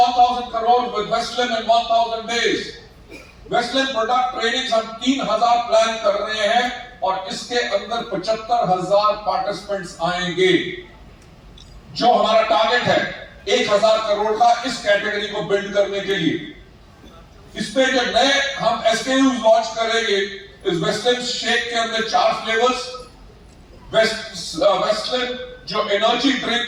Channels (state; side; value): identical; both; correlation 1.00